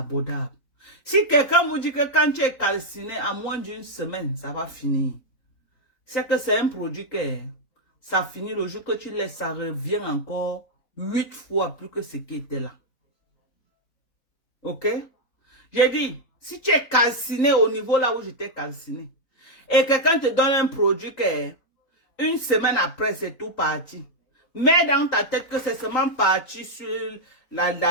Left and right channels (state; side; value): late; right; 3.9 ms